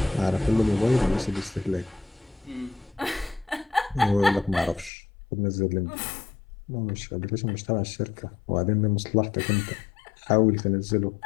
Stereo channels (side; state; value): right; drops out; at 4.9 s